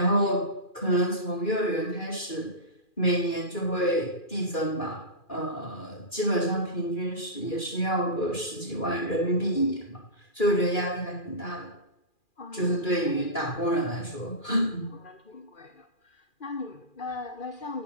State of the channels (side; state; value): right; late; 2.4 ms